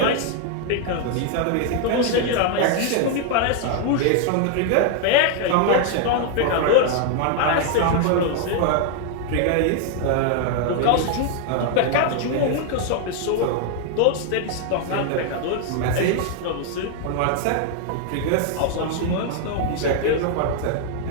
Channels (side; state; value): both; different; correlation 0.00